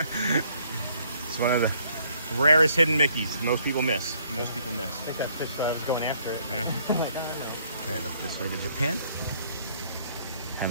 It's one of the rarest hidden Mickeys most people miss. I think that fish where I was going after it. Yeah. Like, oh, And up this way to Japan.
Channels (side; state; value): both; inverted; correlation -0.66